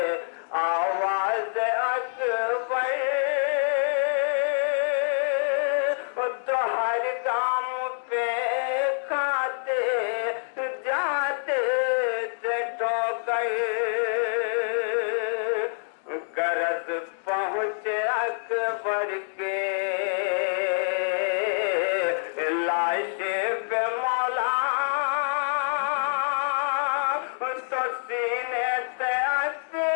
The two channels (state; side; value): silent; right; digital silence